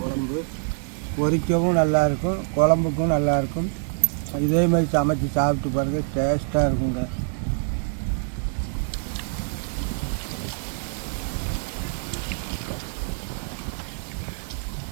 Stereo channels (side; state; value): left; silent; digital silence